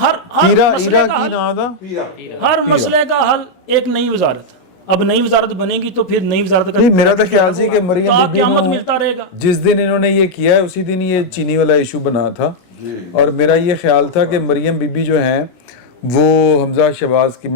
مسئلے کا حل ایک نئی وزارت. اب نئی وزارت بنے گی تو پھر نئی وزارت کا میرا تو خیال سی کہ مریم بی قیامت ملتا رہے گا. جس دن انہوں نے یہ کیا ہے اسی دن یہ چینی والا ایشو بنا تھا، اور میرا یہ خیال تھا کہ مریم بی بی جو ہیں وہ حمزہ شہباز کی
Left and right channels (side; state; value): right; late; 16 ms